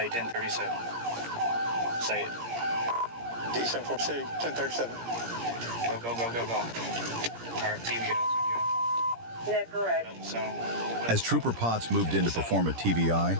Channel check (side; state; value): left; late; 17 ms